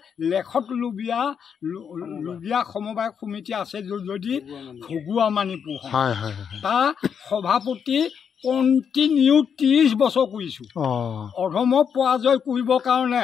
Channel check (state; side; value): quieter; right; 7.3 dB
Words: লেখত লুবিয়া সমবায় সমিতি আছে যদি ঘুগুৱা মানিপুৰ তাৰ সভাপতি কণ্টিনিউ 30 বছৰ কৰিছোঁ। অধমক পৰাজয় কৰিবৰ কাৰণে